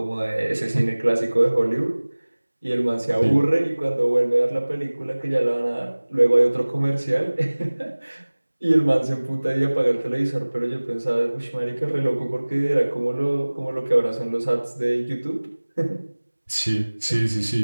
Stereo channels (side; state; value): both; inverted; correlation -1.00